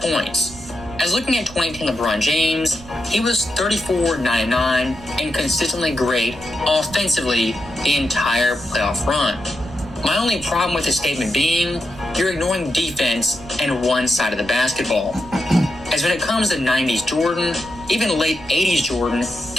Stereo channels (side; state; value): right; noise; rumble, 18 dB below the sound